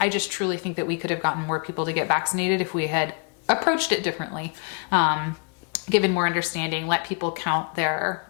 just truly think that we could have gotten more people to get vaccinated if we had approached it differently, given more understanding, let people count their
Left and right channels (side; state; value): right; quieter; 38.9 dB